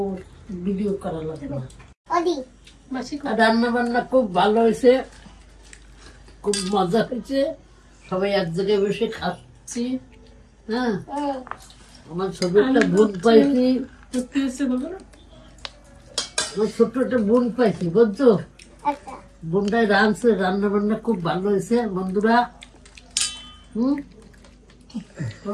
ভিডিও করা লাগবে না। ওদি রান্না বান্না খুব ভালো হয়েছে, খুব মজা হয়েছে, সবাই এক জায়গায় বসে খাচ্ছি। হ্যাঁ, আমার ছোট একটা বোন পাইছি, আমার ছোট্ট একটা বোন পাইছি, বুঝছো? আচ্ছা বোনটাই রাঁধছে, রান্না বান্না খুব ভালো হয়েছে বন্ধুরা।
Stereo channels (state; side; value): identical; both; correlation 1.00